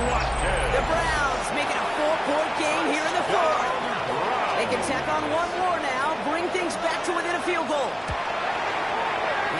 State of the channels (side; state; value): both; identical; correlation 1.00